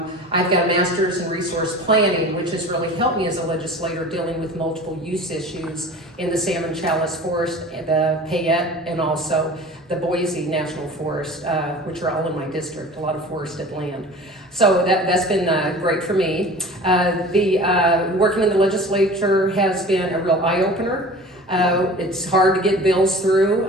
I've got a master's in resource planning, which has really helped me as a legislator dealing with multiple use issues in the Salmon Chalice Forest, the Payette, and also the Boise National Forest, which are all in my district, a lot of forested land. So that's been great for me. Working in the legislature has been a real eye-opener. It's hard to get bills through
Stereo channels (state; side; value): normal; both; correlation 0.41